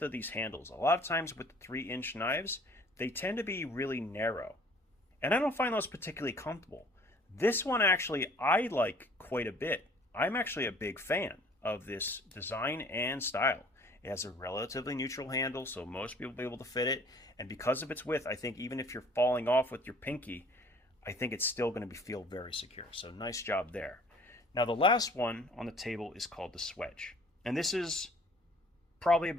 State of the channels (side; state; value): both; normal; correlation 0.54